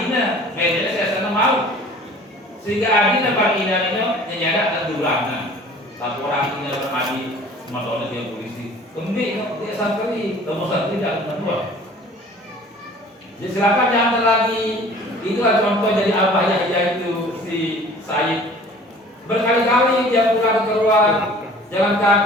bedanya saya sana mau sehingga adina bagi ina itu nyada terdulang laporan ini bermadi motornya dia polisi kemudian dia santri kamu santri tidak menua jadi silakan jangan lagi itulah contoh jadi apa ya yaitu si Said berkali-kali dia pulang keluar jalan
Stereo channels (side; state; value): both; normal; correlation 0.48